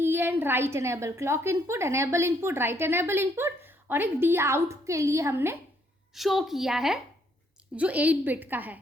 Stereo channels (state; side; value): normal; both; correlation 0.70